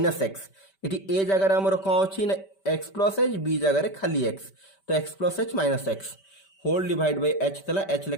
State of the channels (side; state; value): right; late; 5.1 ms